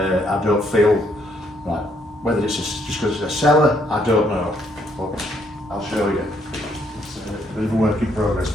don't feel like, whether it's just because it's a cellar, I don't know, but I'll show you. It's a bit of a work in progress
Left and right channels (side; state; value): both; normal; correlation 0.71